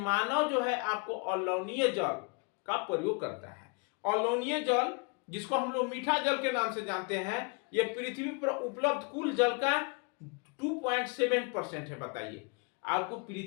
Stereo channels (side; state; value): right; quieter; 33.6 dB